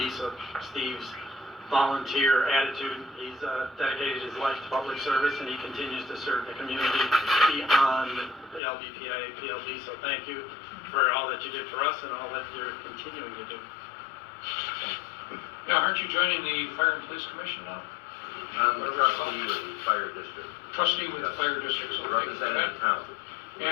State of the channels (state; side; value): drops out; right; at 8.6 s